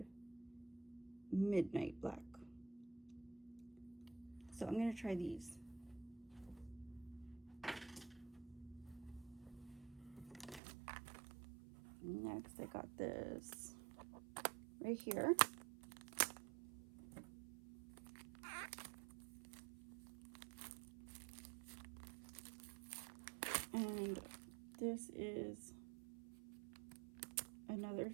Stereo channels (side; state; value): left; drops out; at 10.6 s